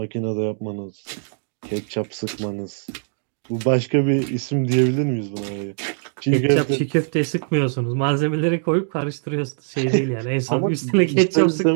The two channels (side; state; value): left; silent; digital silence